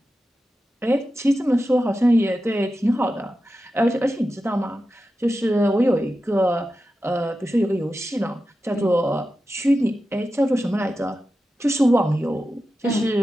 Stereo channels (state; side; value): normal; both; correlation 0.92